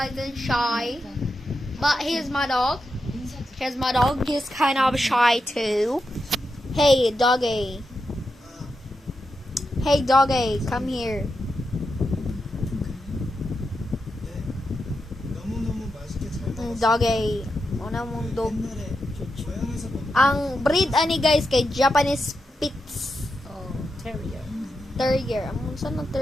and shy. But he's my dog. Here's my dog. He's kind of shy, too. Hey, doggy. Hey, doggy, come here. Doggy. Una mong dog. Ang breed ani guys kay Japanese Spitz. Oh, terrier. Terrier. Amon saan ang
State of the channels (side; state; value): both; normal; correlation 0.87